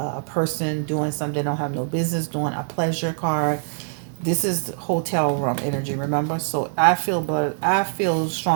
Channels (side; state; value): left; silent; 60 dB below the other